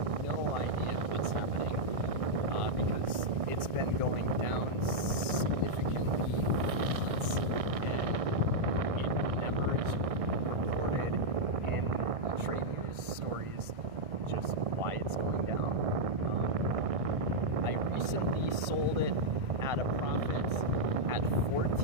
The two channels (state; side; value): late; left; 1.6 ms